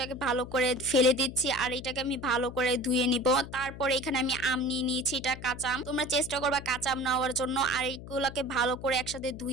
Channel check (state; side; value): noise; left; hum, 13 dB below the sound